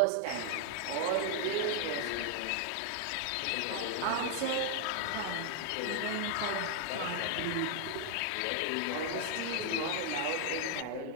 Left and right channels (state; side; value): different; both; correlation 0.00